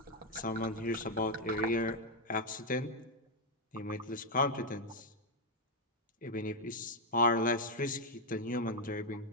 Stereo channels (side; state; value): both; normal; correlation 0.01